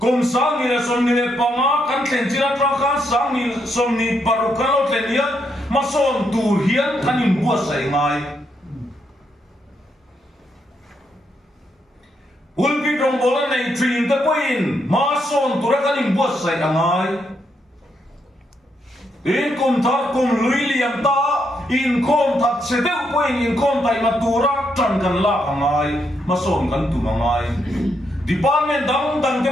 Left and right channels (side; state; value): both; normal; correlation 0.78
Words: sáng ni là sồn ni banga cắn tiền chi là trang khăn sáng ni sồn ni paru cắn lót tiền nhá mà sồn tu hiến cắn in bua say ngay ulpi trong bola này truyền tới quên mà son tụi nó cái niềm buốt say đằng ai in cùng thắt cùng lưỡi liềm ta in com thắt sẽ đeo quên in com tay mà tụi nó chẳng cần la đằng ai mà son cần tụi đằng ai department đằng